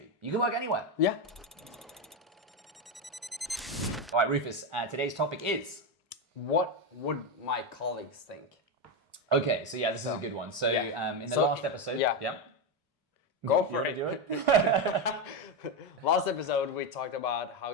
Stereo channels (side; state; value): both; normal; correlation 0.10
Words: You can work anywhere. Yeah. All right, Rufus, today's topic is... What would my colleagues think? Okay, so yeah, this is a good one. So in the last episode... Yeah. Go for it. Do it? Last episode, we talked about how